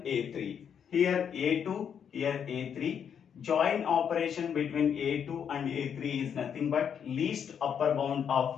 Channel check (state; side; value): quieter; right; 7.9 dB